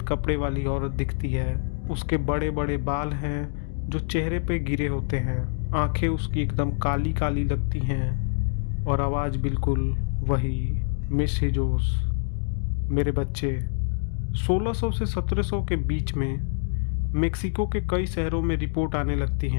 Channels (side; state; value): right; silent; digital silence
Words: कपड़े वाली औरत दिखती है। उसके बड़े बड़े बाल हैं जो चेहरे पे गिरे होते हैं, आंखें उसकी एकदम काली काली लगती हैं और आवाज़ बिल्कुल वही, मिस हिजोस, मेरे बच्चे। 1600 से 1700 के बीच में मेक्सिको के कई शहरों में रिपोर्ट आने लगती